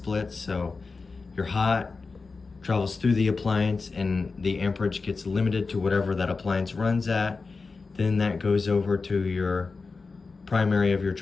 So your hot travels through the appliance and the amperage gets limited to whatever that appliance runs at. Then that goes over to your primary of your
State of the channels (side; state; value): right; quieter; 4.2 dB